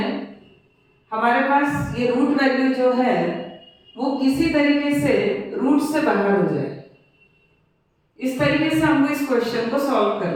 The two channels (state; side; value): identical; both; correlation 1.00